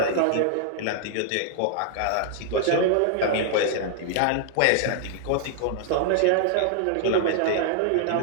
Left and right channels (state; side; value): different; both; correlation -0.01